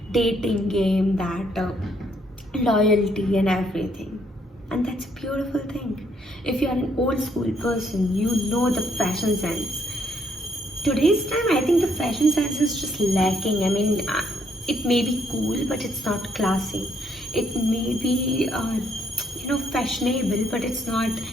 dating game, that loyalty and everything. And that's a beautiful thing. If you are an old school person, you know the fashion sense. Today's time, I think the fashion sense is just lacking. I mean, it may be cool, but it's not classy. It may be, fashionable, but it's not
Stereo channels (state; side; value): normal; both; correlation 0.71